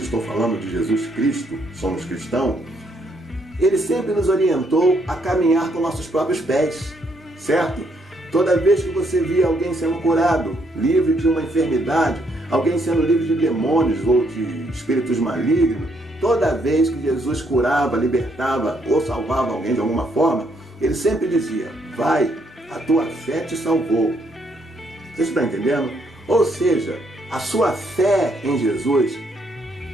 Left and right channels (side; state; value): both; normal; correlation 0.72